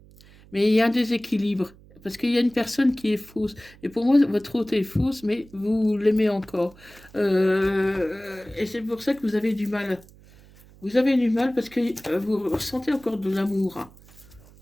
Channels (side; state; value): right; noise; hum, 24 dB below the sound